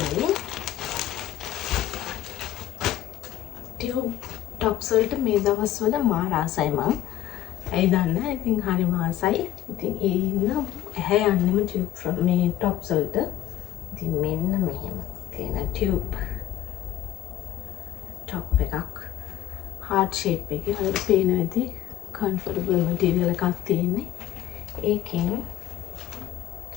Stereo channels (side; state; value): right; quieter; 13.0 dB